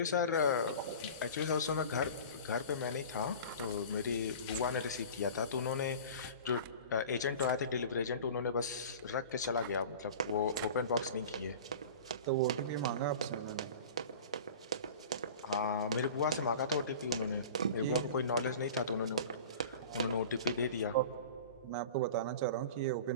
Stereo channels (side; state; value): both; inverted; correlation -0.38